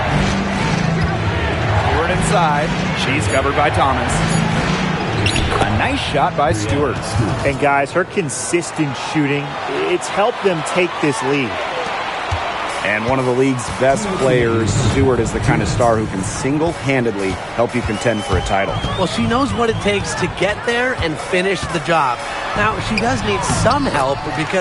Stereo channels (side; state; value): both; identical; correlation 1.00